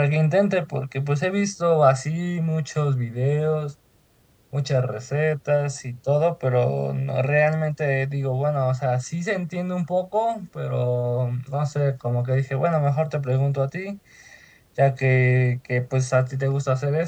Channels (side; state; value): both; identical; correlation 1.00